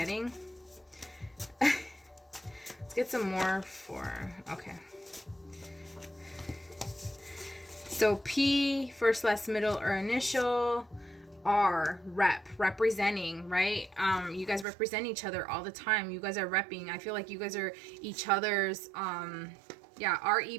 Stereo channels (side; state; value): left; drops out; at 14.7 s